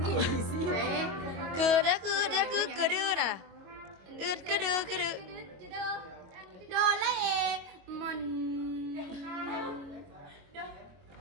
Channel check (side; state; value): left; late; 22 ms